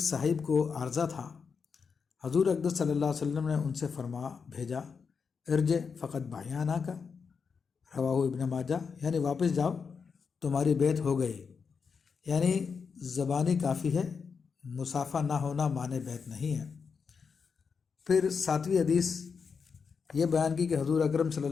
صاحب کو عارضہ تھا، حضور اقدس صلی اللہ علیہ وسلم نے ان سے فرما بھیجا ارجع فقط بایانہ کا، رواہ ابن ماجہ، یعنی واپس جاؤ تمہاری بیعت ہو گئی، یعنی زبانی کافی ہے، مصافحہ نہ ہونا معنی بیعت نہیں ہے۔ پھر 7ویں حدیث یہ بیان کی کہ حضور اکرم صلی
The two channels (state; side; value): quieter; right; 5.7 dB